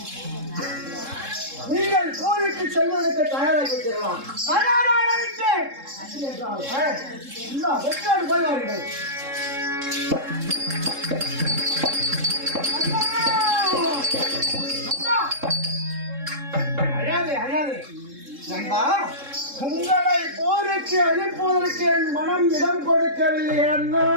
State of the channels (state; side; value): late; left; 3.7 ms